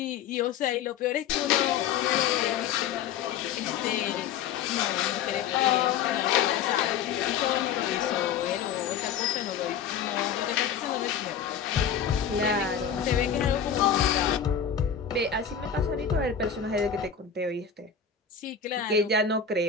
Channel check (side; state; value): right; quieter; 7.8 dB